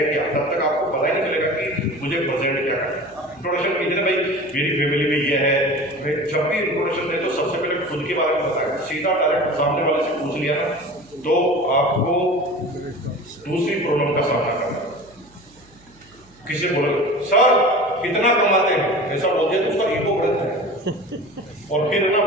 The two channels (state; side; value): noise; right; hum, 29 dB below the sound